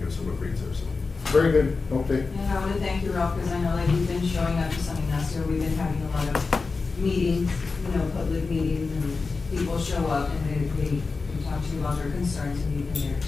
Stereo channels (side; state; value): right; quieter; 4.2 dB